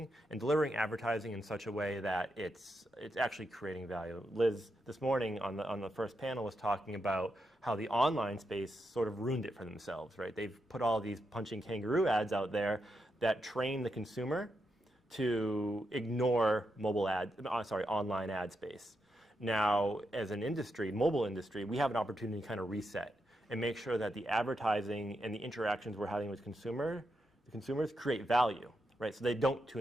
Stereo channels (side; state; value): both; normal; correlation 0.84